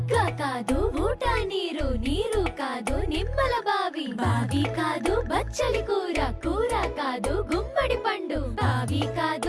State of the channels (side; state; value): both; identical; correlation 1.00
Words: కాదు ఊట నీరు నీరు కాదు నిమ్మల బావి బావి కాదు బచ్చలి కూర కూర కాదు గుమ్మడి పండు బావి